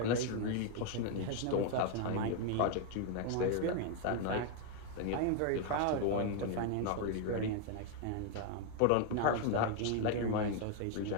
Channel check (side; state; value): both; different; correlation 0.00